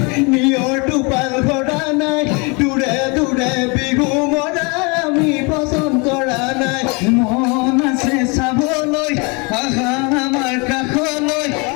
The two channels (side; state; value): right; quieter; 30.3 dB